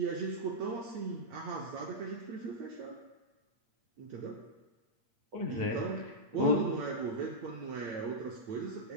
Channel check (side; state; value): left; late; 8.6 ms